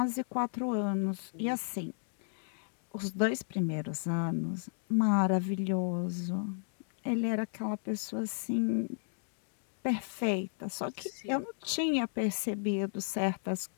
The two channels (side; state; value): right; silent; digital silence